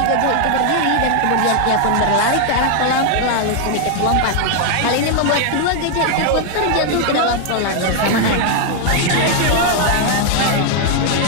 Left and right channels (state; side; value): different; both; correlation 0.00